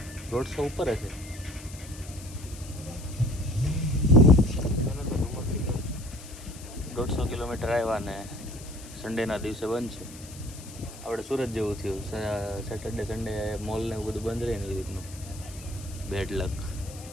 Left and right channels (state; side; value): noise; left; hiss, 17 dB below the sound